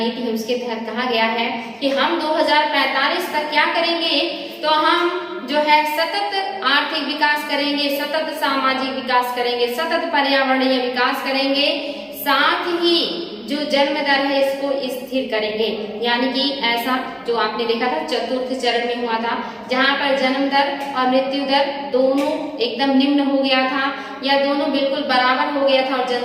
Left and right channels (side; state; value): both; identical; correlation 1.00